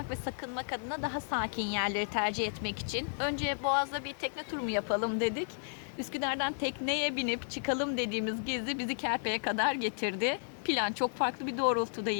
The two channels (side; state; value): right; silent; 56 dB below the other